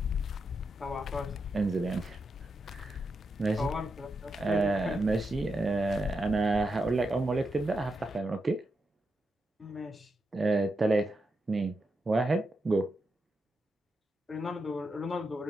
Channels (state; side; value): normal; both; correlation 0.85